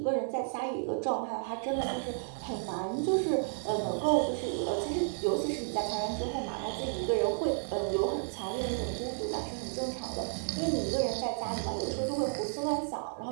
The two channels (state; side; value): silent; left; 56 dB below the other